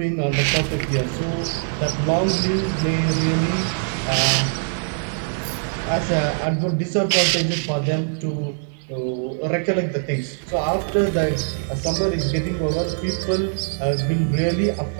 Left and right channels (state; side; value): silent; left; digital silence